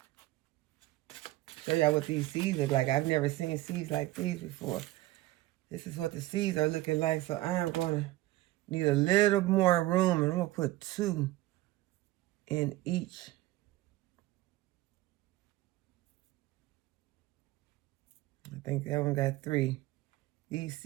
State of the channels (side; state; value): left; quieter; 17.3 dB